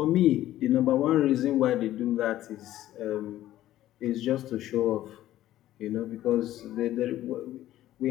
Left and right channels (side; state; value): right; quieter; 13.9 dB